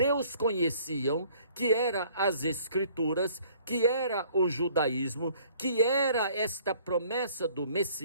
conheciam, que era as Escrituras, que era o judaísmo, que era esta promessa do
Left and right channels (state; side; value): inverted; both; correlation -0.57